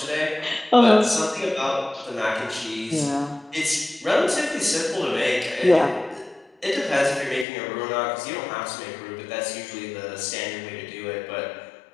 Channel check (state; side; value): drops out; right; at 7.5 s